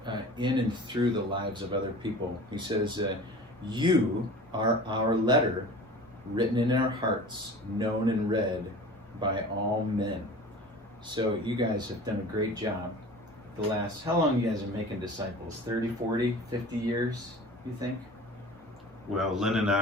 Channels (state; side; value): normal; both; correlation 0.40